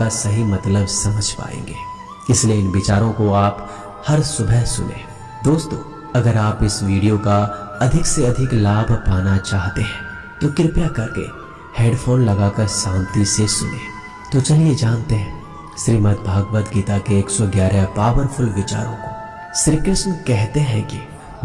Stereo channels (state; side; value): identical; both; correlation 1.00